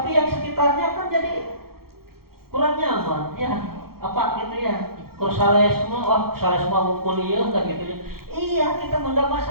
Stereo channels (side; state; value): left; late; 0.94 ms